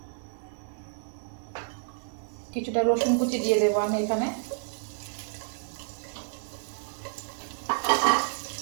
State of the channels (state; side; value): silent; left; digital silence